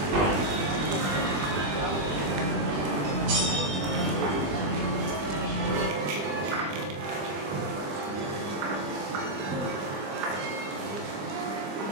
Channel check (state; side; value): late; left; 20 ms